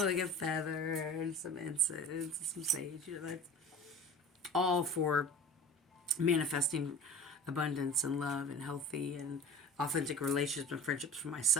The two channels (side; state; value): both; normal; correlation 0.37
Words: a feather and some incense and some sage. You know, that's all for manifesting abundance and love and healthy and authentic relationships and friendships for